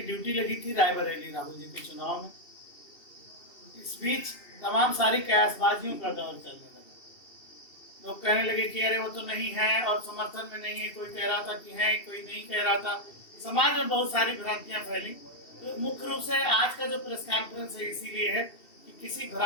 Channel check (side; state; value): right; late; 2.7 ms